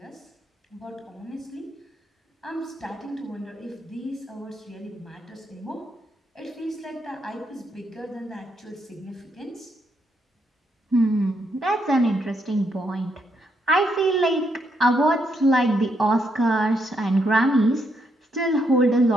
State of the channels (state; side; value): normal; both; correlation 0.77